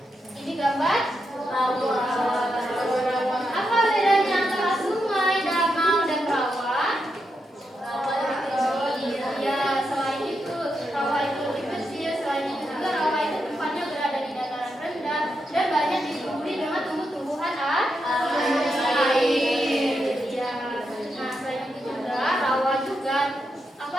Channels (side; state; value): both; normal; correlation 0.84